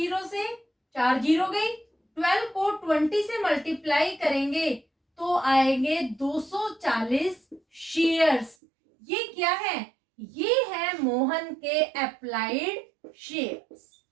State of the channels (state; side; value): drops out; left; at 8.6 s